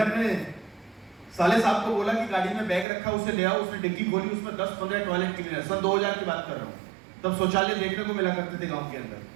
अपने साले साहब को बोला कि गाड़ी में बैग रखा, उसे ले आओ। उसने डिग्गी खोली, उसमें 10-15 टॉयलेट क्लीनर। सन 2000 की बात कर रहा हूँ, तब शौचालय देखने को मिला करते थे गाँव के अंदर।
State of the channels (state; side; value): drops out; left; at 2.9 s